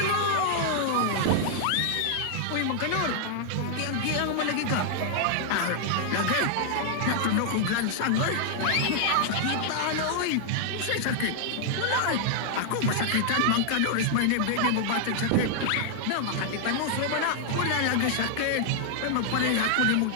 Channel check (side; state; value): both; different; correlation -0.01